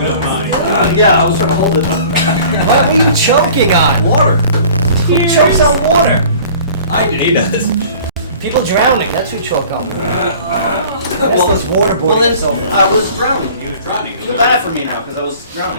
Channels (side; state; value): both; inverted; correlation -0.47